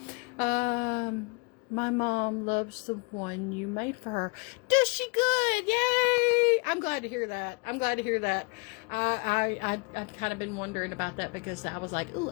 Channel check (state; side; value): quieter; right; 31.3 dB